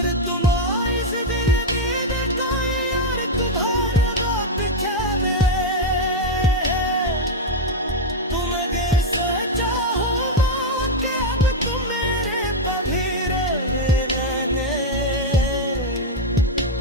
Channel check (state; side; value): normal; both; correlation 0.01